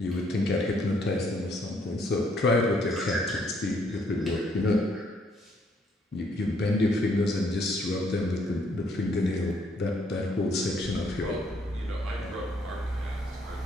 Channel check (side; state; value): both; normal; correlation 0.69